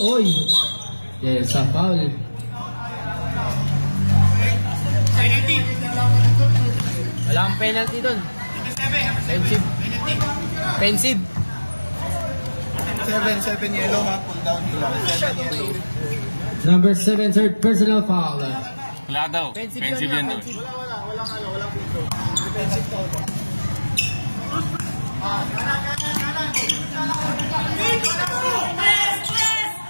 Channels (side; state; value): both; inverted; correlation -1.00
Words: Yes, a foul. Wala kang penalty doon. Pensive. 7 yellow ha. Pull down nila. 7 yellow. Number 7, third personal foul. Wala daw. Pensive yan daw.